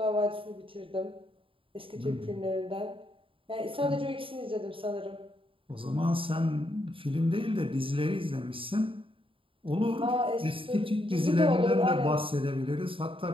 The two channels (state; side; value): late; left; 0.26 ms